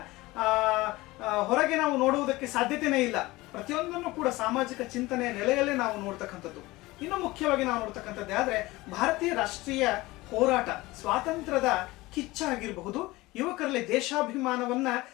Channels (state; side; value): quieter; right; 20.2 dB